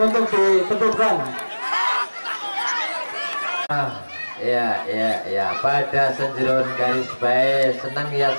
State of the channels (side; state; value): both; inverted; correlation -1.00